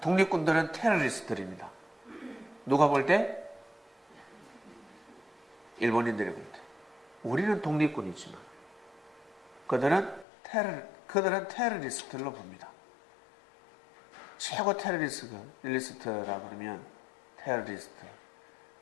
독립군들은 테러리스트들입니다. 누가 볼 때? 일본인들이 볼 때. 우리는 독립군이지만 그들은 테러리스트로 봅니다. 최고 테러리스트라 그러면 테러리스트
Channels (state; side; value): drops out; right; at 10.2 s